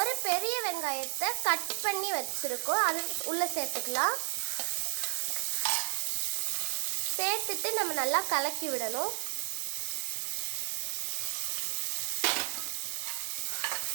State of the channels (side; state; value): left; silent; 56 dB below the other